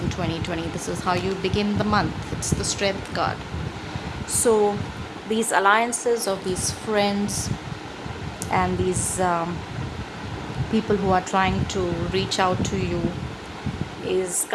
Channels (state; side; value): identical; both; correlation 1.00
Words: 2020? This is how you begin the month. It's the Strength card. So these alliances of these friends and these people who are trying to reach out to you is